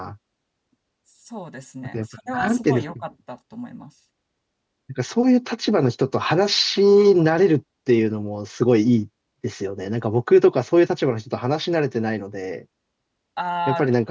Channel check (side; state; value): both; identical; correlation 1.00